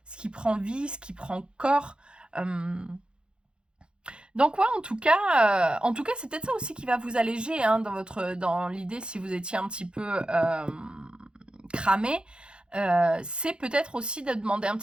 prend vie, ce qui prend corps. Donc ouais, en tout cas, c'est peut-être ça aussi qui va vous alléger dans l'idée si vous étiez un petit peu cramé. C'est peut-être aussi de demander un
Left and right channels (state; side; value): late; left; 0.053 ms